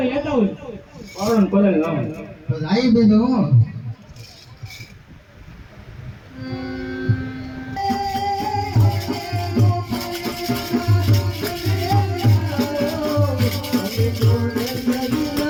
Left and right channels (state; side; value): identical; both; correlation 1.00